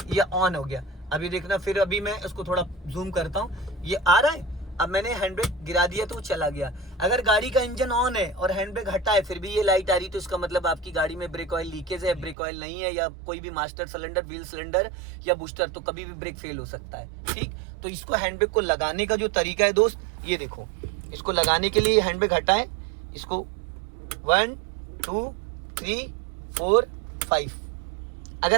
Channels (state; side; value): drops out; left; at 12.4 s